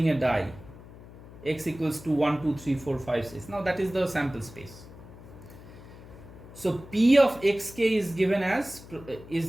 a die, x equals to 1, 2, 3, 4, 5, 6. Now that is the sample space. So P of xk is given as,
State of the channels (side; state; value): left; noise; hum, 18 dB below the sound